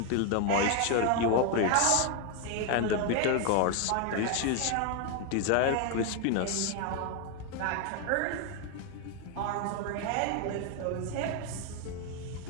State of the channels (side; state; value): both; different; correlation 0.01